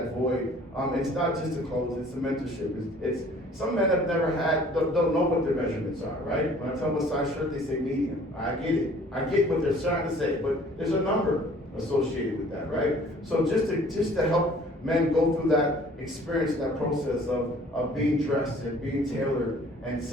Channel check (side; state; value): both; normal; correlation 0.53